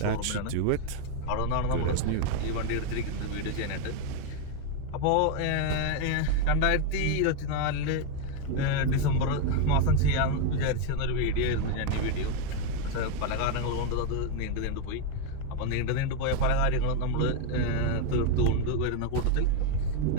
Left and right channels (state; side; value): different; both; correlation 0.01